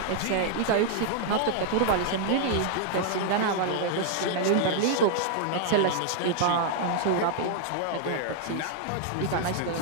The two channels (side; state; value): both; different; correlation 0.00